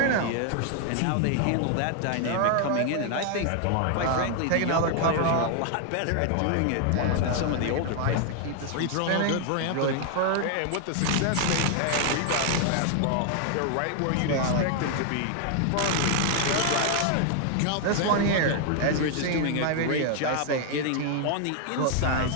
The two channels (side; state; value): both; different; correlation 0.00